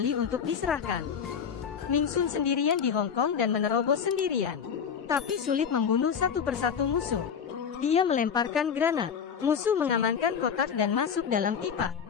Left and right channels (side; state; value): right; quieter; 7.2 dB